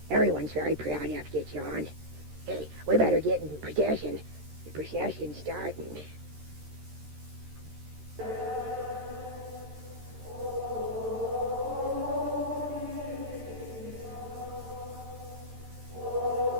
Everyone's very proud of you, John. Hey, we better get in procession. The procession's starting.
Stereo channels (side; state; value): left; late; 13 ms